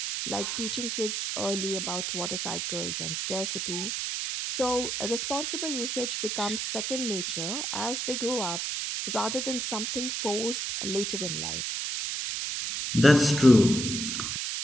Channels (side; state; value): right; noise; hiss, 2 dB below the sound